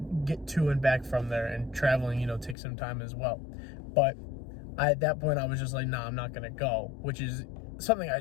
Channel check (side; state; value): right; drops out; at 2.6 s